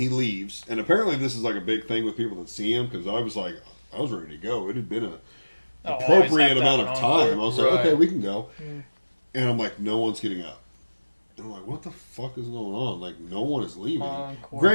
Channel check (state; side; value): inverted; both; correlation -1.00